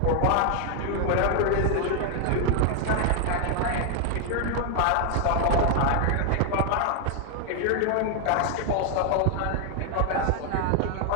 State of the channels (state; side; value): different; both; correlation 0.00